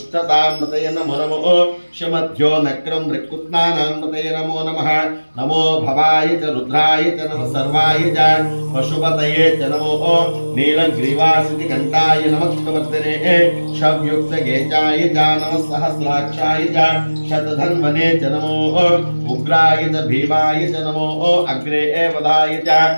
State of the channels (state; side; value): inverted; both; correlation -1.00